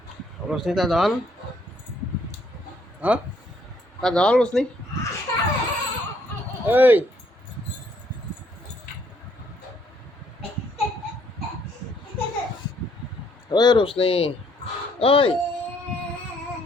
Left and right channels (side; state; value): both; normal; correlation 0.67